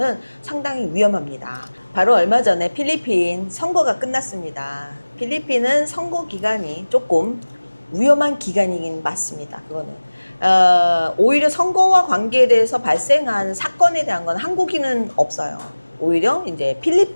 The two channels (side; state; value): both; inverted; correlation -1.00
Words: 상당히 위험합니다. 바로 얼마 전에 필리핀 선거가 끝났습니다. 필리핀은 선거 기간이 조금 위험한 기간이긴 맞습니다. 그거는 오히려 선거와 관계돼서 발생한 사건에 대한 건 한국인은 없어요. 오히려 이제